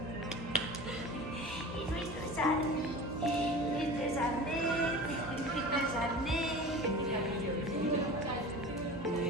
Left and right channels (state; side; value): normal; both; correlation 0.36